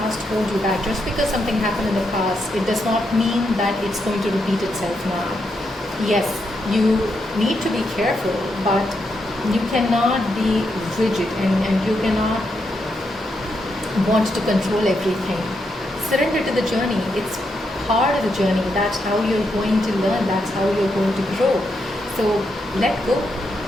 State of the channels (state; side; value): normal; both; correlation 0.82